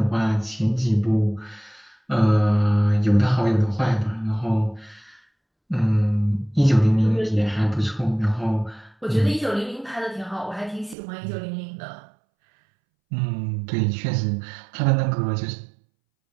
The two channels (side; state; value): left; drops out; at 11.0 s